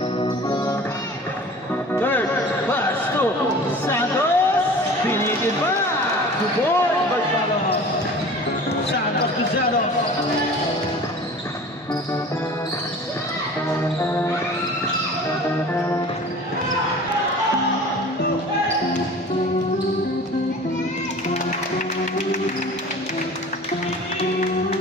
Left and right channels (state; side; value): normal; both; correlation 0.41